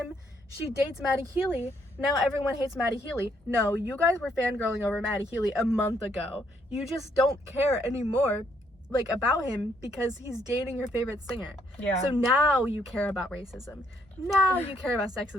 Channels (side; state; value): both; normal; correlation 0.71